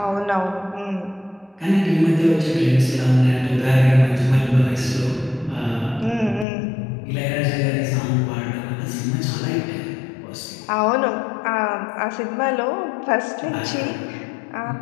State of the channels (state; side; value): drops out; right; at 6.5 s